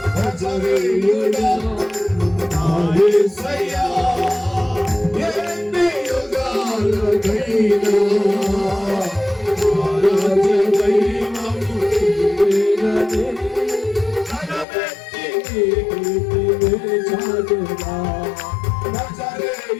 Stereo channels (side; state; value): right; drops out; at 14.7 s